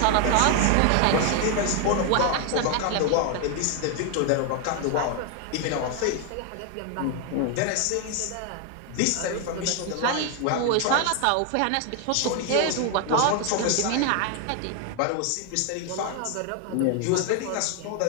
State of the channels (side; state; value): both; different; correlation 0.01